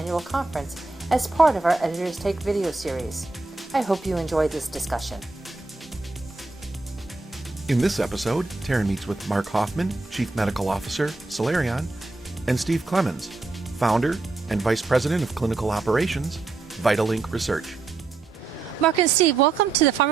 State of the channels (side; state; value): left; quieter; 3.6 dB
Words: conference as part of our Editors Take video series. I hope you enjoyed this discussion. In this episode, Taryn meets with Mark Hoffman, Chief Medical Officer, Celerion, and Steve Clemens, Founder and Vice President of Clinical Operations, VitalLink Research. Mark and Steve, welcome to the